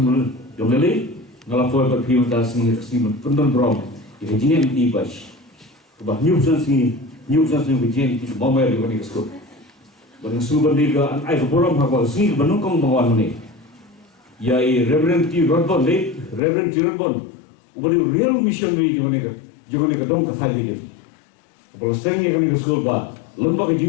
yang lele ngalapoi berpiu tas ni pendon brom. Ia jenis ibas. Bah new sense ni begin di mau di mana school. Bang suban dia an ai brom haba sini benukong bawan ni. Ya Reverend T. Rodbon le Reverend T. Rodbon. Ubari real missionary di mana ke dong ke tadi dia. Kalau sering yang kami ke sekolah bah, lembaga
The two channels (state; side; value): drops out; right; at 16.4 s